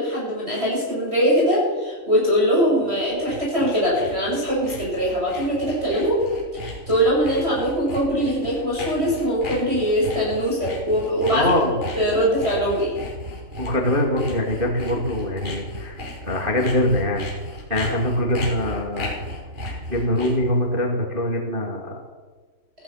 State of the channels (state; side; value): late; left; 3.1 ms